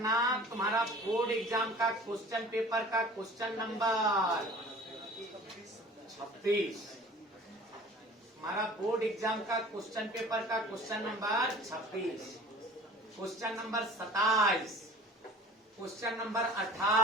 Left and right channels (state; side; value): normal; both; correlation 0.45